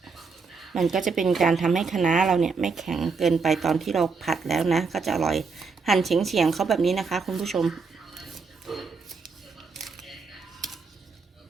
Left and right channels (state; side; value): quieter; left; 4.8 dB